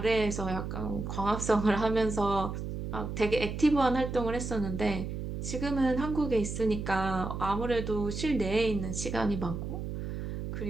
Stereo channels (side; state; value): right; noise; hum, 5 dB below the sound